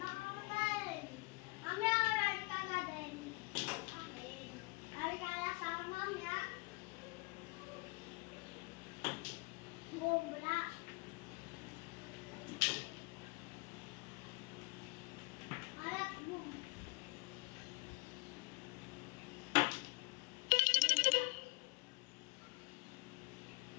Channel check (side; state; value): right; quieter; 29.1 dB